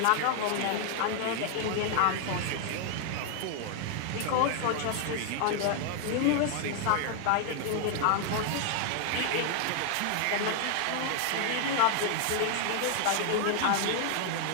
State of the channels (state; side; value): different; both; correlation 0.00